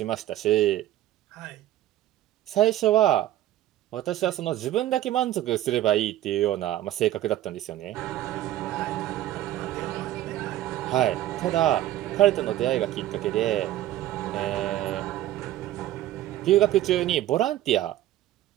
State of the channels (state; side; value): quieter; left; 13.7 dB